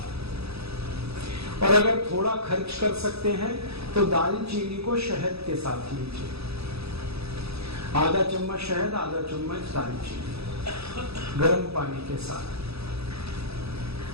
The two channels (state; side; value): late; left; 0.78 ms